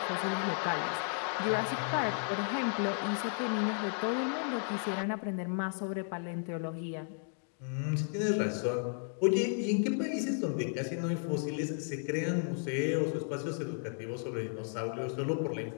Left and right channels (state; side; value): silent; right; 55 dB below the other